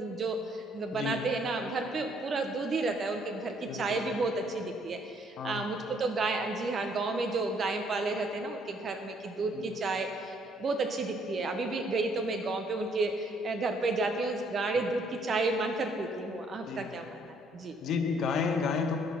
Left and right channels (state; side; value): normal; both; correlation 0.66